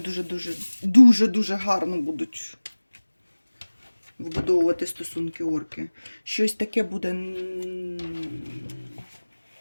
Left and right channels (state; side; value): inverted; both; correlation -1.00